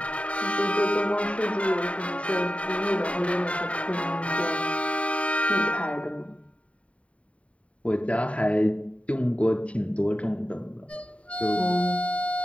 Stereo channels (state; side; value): late; right; 0.064 ms